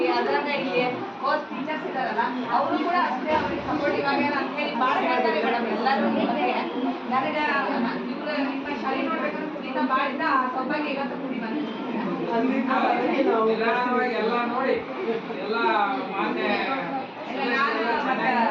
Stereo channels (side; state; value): both; identical; correlation 1.00